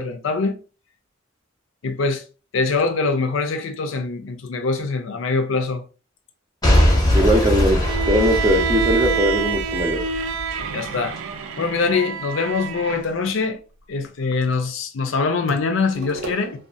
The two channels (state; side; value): normal; both; correlation 0.43